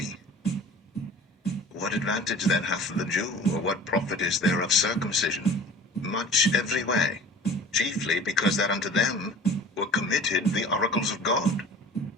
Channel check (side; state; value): both; normal; correlation 0.43